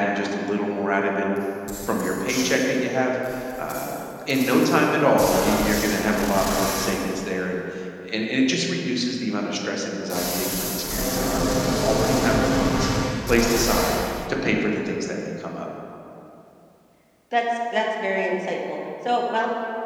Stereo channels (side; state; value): both; identical; correlation 1.00